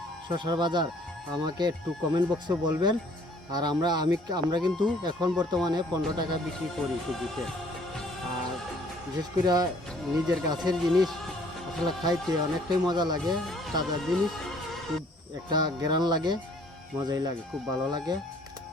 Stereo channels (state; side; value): normal; both; correlation 0.59